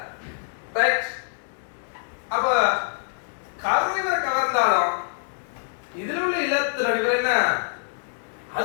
ரைட். அப்ப கரு இவரை கவர்ந்தாலும் இதுல உள்ள இலத்திரன் இவர் என்ன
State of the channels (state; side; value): silent; right; digital silence